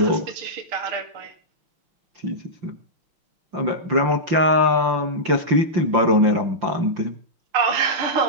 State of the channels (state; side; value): late; left; 5.8 ms